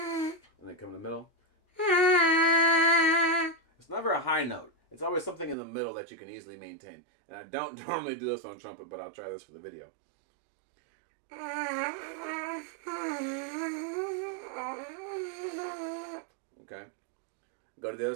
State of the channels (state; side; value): drops out; left; at 5.6 s